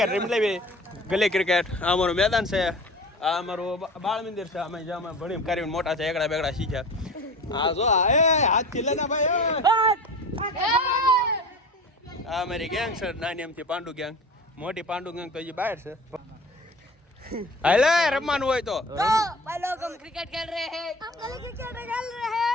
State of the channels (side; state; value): both; normal; correlation 0.37